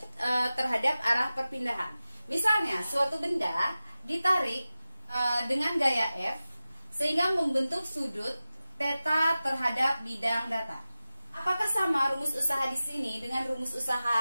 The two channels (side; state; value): both; inverted; correlation -0.96